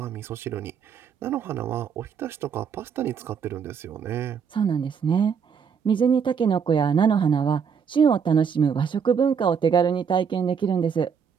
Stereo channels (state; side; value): quieter; left; 6.8 dB